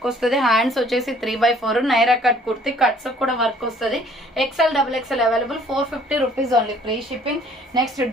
వస్తుంది. హ్యాండ్స్ వచ్చేసి 3x4 Naira cut kurti. Cuts కూడా వర్క్ వస్తుంది. XL, double XL available. 450 rupees only, free shipping. Next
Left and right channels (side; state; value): both; normal; correlation 0.57